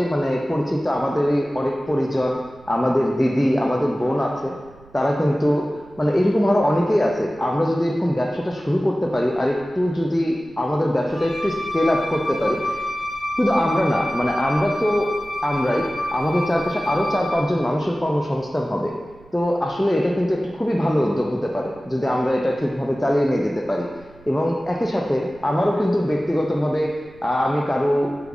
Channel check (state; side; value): noise; right; rumble, 25 dB below the sound